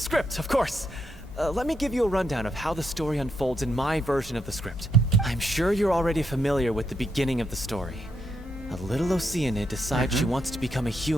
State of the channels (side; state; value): both; normal; correlation 0.80